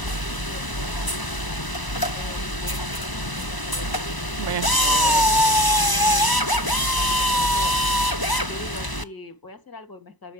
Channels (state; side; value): late; right; 1.0 ms